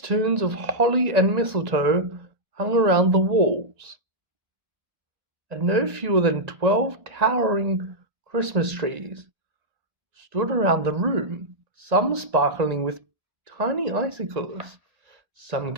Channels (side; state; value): left; late; 1.9 ms